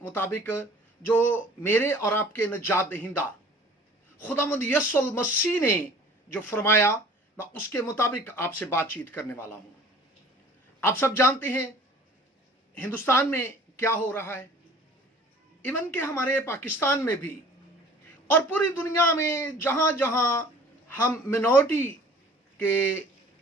मुताबिक जो मेरे और आपके नजात दहिंदा खुदावंद यीशु मसीह ने जो फरमाया, मैं उसके मुताबिक आपसे बातचीत करने वाला हूं। आप सब जानते हैं हिंदुस्तान में क्या हो रहा है, इवन के हमारे पाकिस्तान में भी और पूरी दुनिया में जहां जहां हम मिनॉरिटी के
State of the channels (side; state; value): both; normal; correlation 0.49